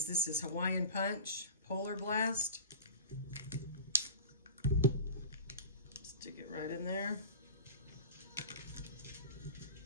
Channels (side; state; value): both; inverted; correlation -0.35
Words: This is Hawaiian Punch Polar Blast. Stick it right in there.